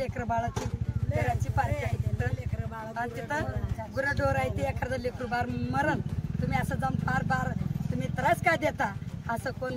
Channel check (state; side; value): identical; both; correlation 1.00